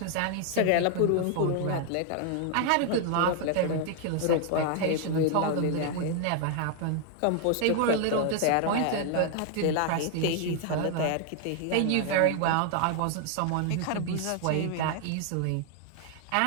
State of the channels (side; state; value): both; different; correlation 0.00